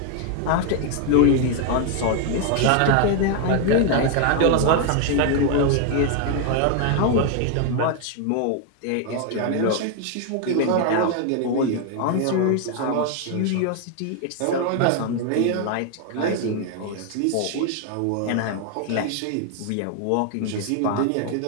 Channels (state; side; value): different; both; correlation 0.01